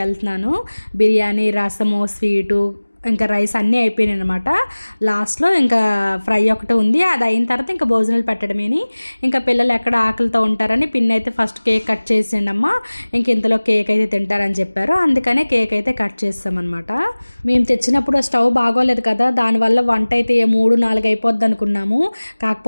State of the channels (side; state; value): both; inverted; correlation -1.00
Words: వెళ్తున్నాను. బిర్యానీ, రసము, స్వీటు, ఇంకా రైస్ అన్నీ అయిపోయినాయి అనమాట. లాస్ట్లో ఇంకా ఫ్రై ఒకటి ఉంది. అది అయిన తర్వాత ఇంకా భోజనాలు పెట్టడమేని. ఇంకా పిల్లలు ఎక్కడ ఆకలితో ఉంటారని పిన్ని అయితే ఫస్ట్ కేక్ కట్ చేసిండమ్మా, ఇంక ఇంతలో కేక్ అయితే తింటారని చెప్పారు. అందుకనే కేక్ అయితే కట్ చేస్తామన్నమాట. మేము తెచ్చినప్పుడు స్టవ్ బాగోలేదు కదా, దానివల్ల వంట అయితే 3-4 అయిపోద్ది అనుకున్నాము.